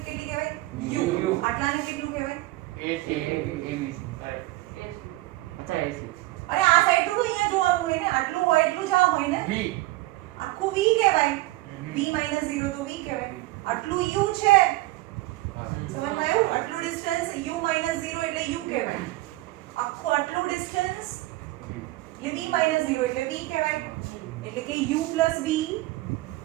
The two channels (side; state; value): left; quieter; 19.0 dB